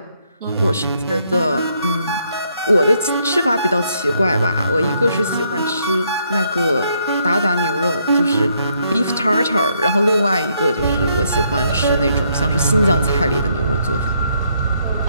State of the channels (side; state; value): both; inverted; correlation -0.73